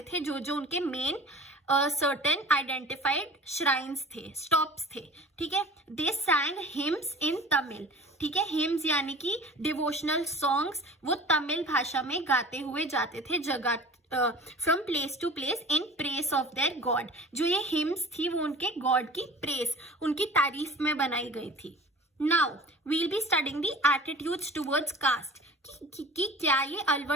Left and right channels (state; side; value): normal; both; correlation 0.42